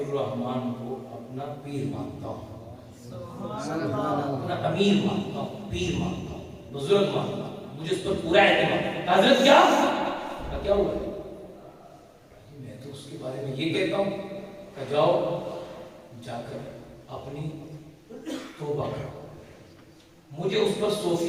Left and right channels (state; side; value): identical; both; correlation 1.00